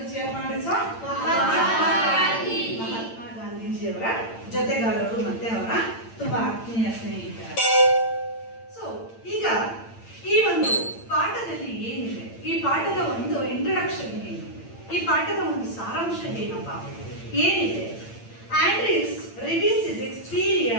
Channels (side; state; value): right; late; 8.8 ms